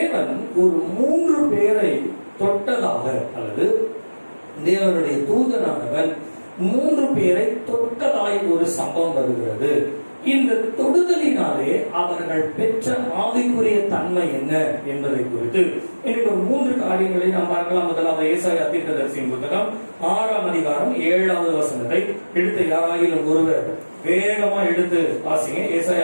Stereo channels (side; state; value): both; inverted; correlation -1.00